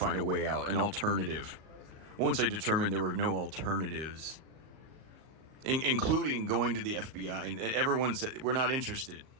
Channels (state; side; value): late; left; 38 ms